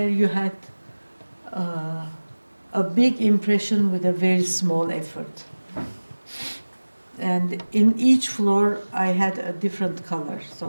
you had a big impression with a very small effort. And in each floor, I had a different color. So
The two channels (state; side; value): inverted; both; correlation -1.00